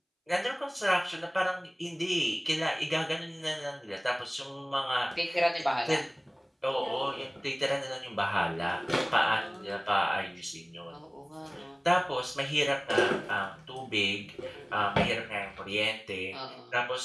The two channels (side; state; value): both; identical; correlation 1.00